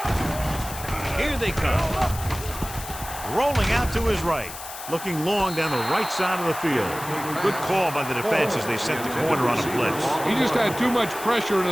Here they come. Rolling out to his right. Looking long down the right side of the field. Good call by the defense as they sent the corner on a blitz. He just had too much pressure in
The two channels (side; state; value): left; noise; hiss, 11 dB below the sound